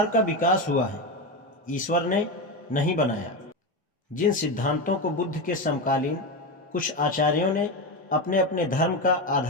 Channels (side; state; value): both; normal; correlation 0.16